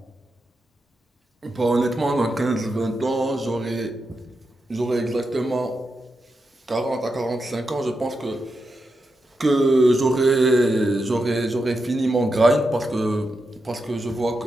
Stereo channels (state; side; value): normal; both; correlation 0.87